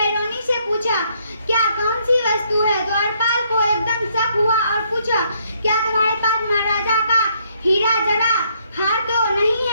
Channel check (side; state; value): both; inverted; correlation -0.70